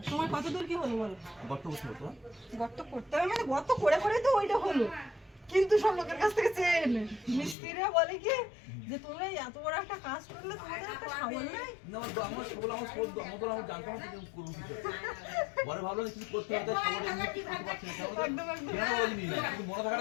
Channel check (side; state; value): right; drops out; at 7.6 s